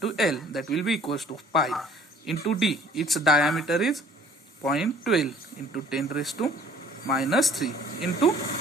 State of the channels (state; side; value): normal; both; correlation 0.54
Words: L. That will be equals to pi into d. Its diameter is 0.12 into 10 raised to minus 3 into